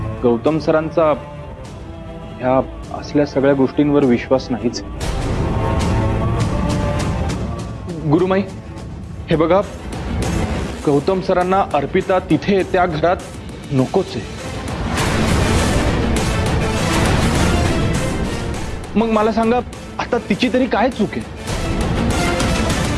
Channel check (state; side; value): identical; both; correlation 1.00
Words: गौतम सरांचा ह्या असल्या सगळ्या गोष्टींवर विश्वास नाहीच. गुरुमाई, हे बघा, गौतम सरांना अर्पिता तिथे त्या घरात नकोच आहे. मग मला सांगा, आता तिची तरी काय चूक आहे?